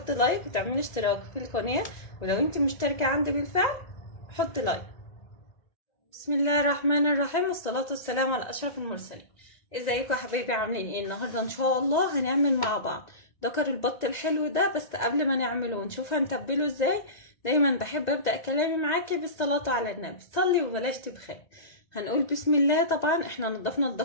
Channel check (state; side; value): late; right; 1.9 ms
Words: لايك وتعملي اشتراك في القناه، ولو انت مشتركه عندي بالفعل حط لايك. بسم الله الرحمن الرحيم، والصلاة والسلام على أشرف المرسلين. ازيكم يا حبايبي، عاملين ايه؟ النهارده ان شاء الله هنعمل مع بعض دكر البط الحلو ده. بس قبل ما نعمله ونشوف هنتبله ازاي، دايما بحب ابدا كلامي معاكي بالصلاة على النبي. صلي وبلاش تبخل. هنقول بسم الله. طبعا احنا نضفنا